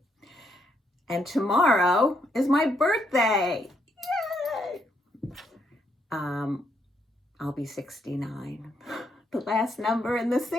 And tomorrow is my birthday. Yay! I'll be 69. The last number in the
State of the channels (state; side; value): normal; both; correlation 0.75